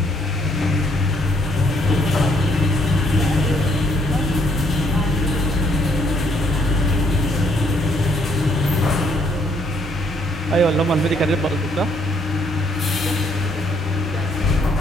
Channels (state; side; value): normal; both; correlation 0.68